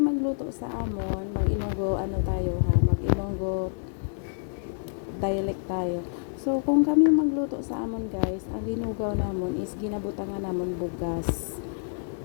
magluto sa amon, mag-Ilonggo mag-Ilonggo dialect tayo. So kung kami magluto sa amon guys, ang linugaw namon is ginabutangan namon bugas.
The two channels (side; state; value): right; silent; 60 dB below the other